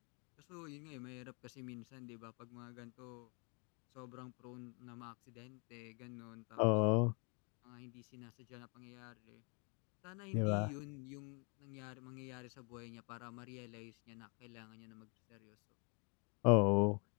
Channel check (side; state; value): right; quieter; 34.8 dB